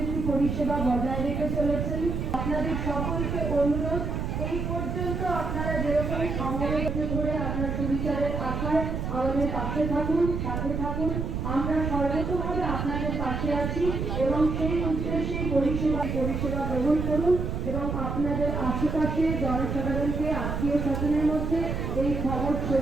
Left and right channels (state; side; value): noise; right; rumble, 2 dB below the sound